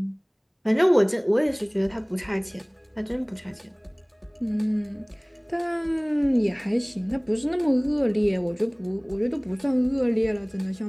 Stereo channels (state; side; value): identical; both; correlation 1.00